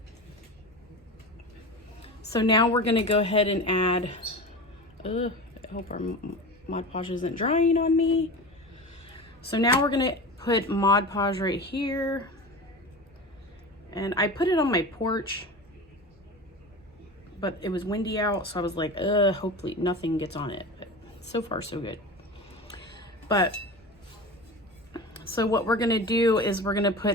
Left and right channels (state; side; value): normal; both; correlation 0.30